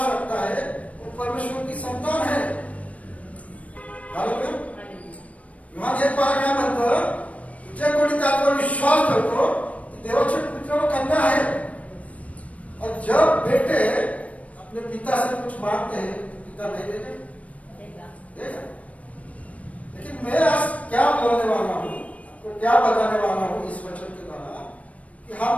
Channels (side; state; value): right; late; 0.066 ms